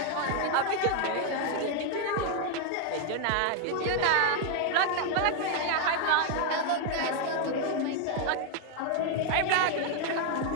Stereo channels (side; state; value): both; different; correlation 0.00